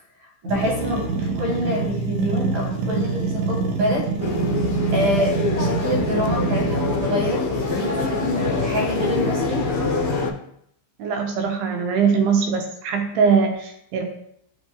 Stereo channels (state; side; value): late; left; 15 ms